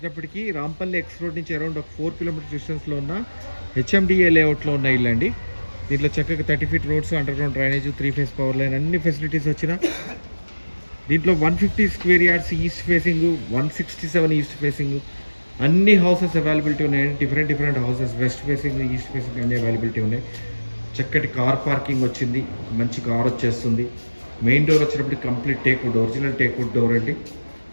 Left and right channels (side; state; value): both; inverted; correlation -1.00